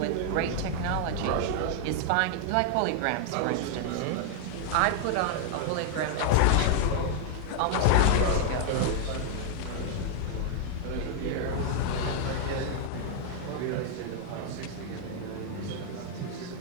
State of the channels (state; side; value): different; both; correlation -0.01